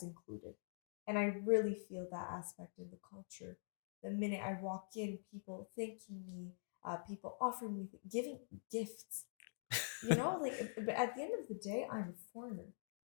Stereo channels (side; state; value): right; silent; digital silence